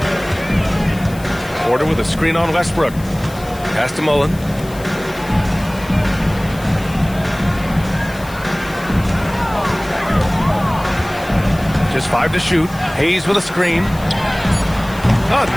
Porter with a screen on Westbrook. Pass to Mullen. Just 5 to shoot. Hayes with a screen. Oh,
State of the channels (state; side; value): noise; left; hiss, 20 dB below the sound